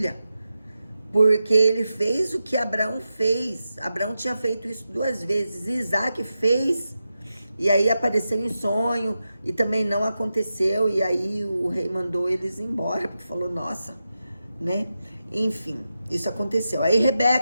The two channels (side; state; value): both; inverted; correlation -0.90